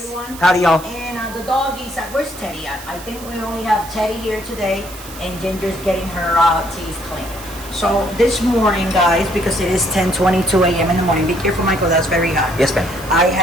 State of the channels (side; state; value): right; noise; hiss, 16 dB below the sound